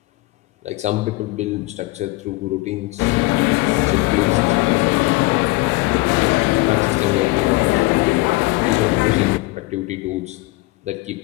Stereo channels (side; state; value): right; quieter; 21.8 dB